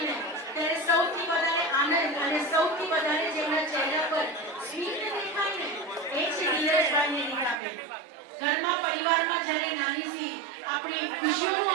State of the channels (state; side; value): drops out; left; at 7.6 s